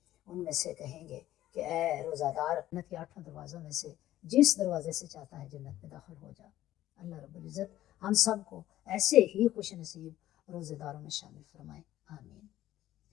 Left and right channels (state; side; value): quieter; right; 13.9 dB